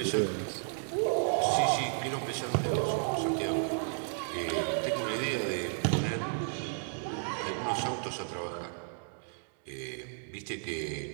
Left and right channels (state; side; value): silent; left; digital silence